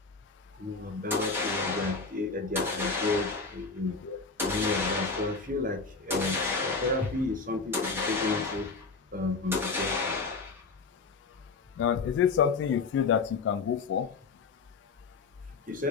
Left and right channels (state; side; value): quieter; right; 4.4 dB